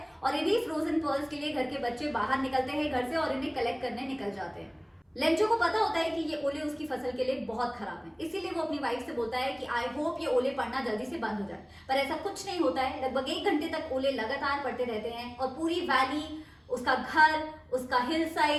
और इन्हीं फ्रोजन पर्ल्स के लिए घर के बच्चे बाहर निकलते हैं घर से और इन्हें कलेक्ट करने निकल जाते हैं। लेंचो को पता होता है कि ये ओले उसकी फसल के लिए बहुत खराब हैं, इसीलिए वो अपनी वाइफ से बोलता है कि आई होप ये ओले पड़ना जल्दी से बंद हो जाए, पर ऐसा कुछ नहीं होता है। लगभग 1 घंटे तक ओले लगातार पड़ते रहते हैं और पूरी वैली, उसका घर, उसका हिल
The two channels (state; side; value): identical; both; correlation 1.00